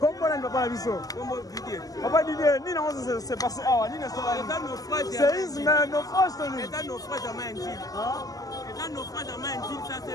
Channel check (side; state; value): right; late; 0.17 ms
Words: kombo nani papa na biso papa Didier nini yango se passe awa nini séisme naufrage toni naufrage ya mai njili eza naufrage ya mai njili ça